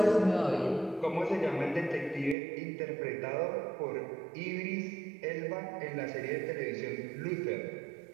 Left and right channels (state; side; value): drops out; left; at 2.4 s